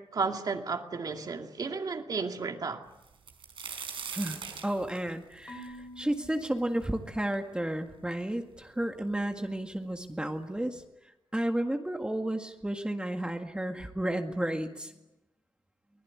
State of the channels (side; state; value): both; normal; correlation 0.86